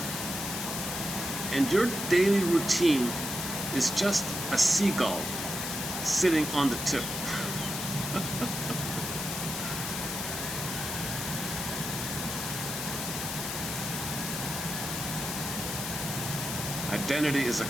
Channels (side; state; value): left; noise; hiss, 4 dB below the sound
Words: and your daily routine is just a seagull sitting on the tip. Identity is a